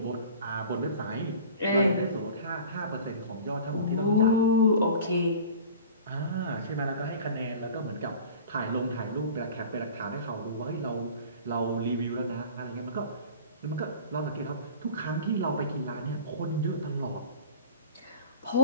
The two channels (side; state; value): both; inverted; correlation -0.41